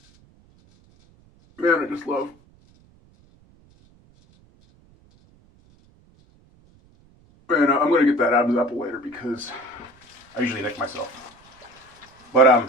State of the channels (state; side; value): noise; right; rumble, 30 dB below the sound